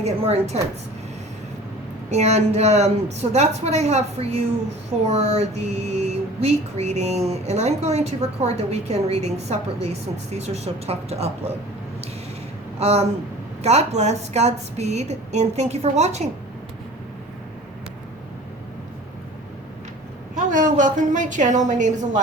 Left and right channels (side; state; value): both; normal; correlation 0.44